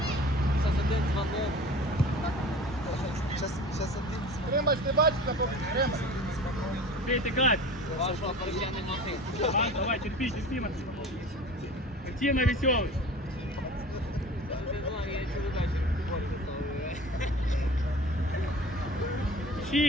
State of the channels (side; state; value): both; normal; correlation 0.39